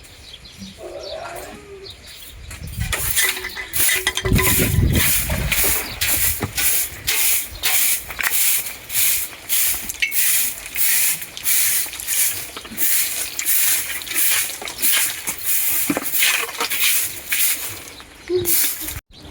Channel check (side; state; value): both; identical; correlation 1.00